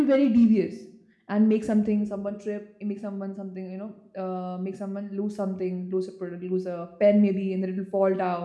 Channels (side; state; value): both; identical; correlation 1.00